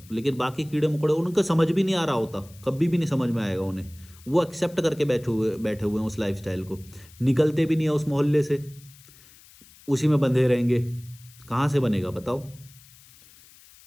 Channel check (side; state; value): left; noise; hiss, 24 dB below the sound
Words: लेकिन बाकी कीड़े मकोड़े उनका समझ भी नहीं आ रहा होता, कभी भी नहीं समझ में आएगा उन्हें। वो एक्सेप्ट करके बैठे हुए हैं उस लाइफस्टाइल को, निकलते भी नहीं है उस मोहल्ले से, उसी में बंधे रहेंगे। कहाँ से बनेगा बताओ।